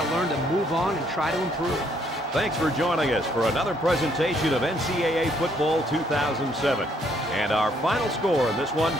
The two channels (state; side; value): normal; both; correlation 0.68